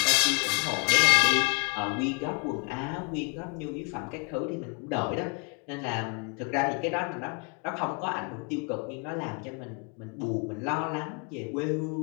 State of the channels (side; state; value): right; quieter; 36.5 dB